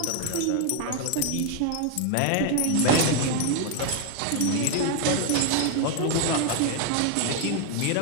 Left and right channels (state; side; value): different; both; correlation 0.01